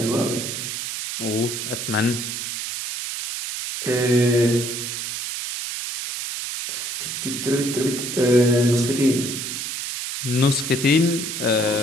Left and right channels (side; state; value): right; noise; hiss, 5 dB below the sound